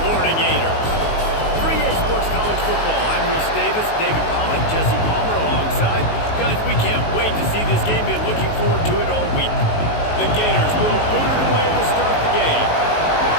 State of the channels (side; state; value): right; late; 19 ms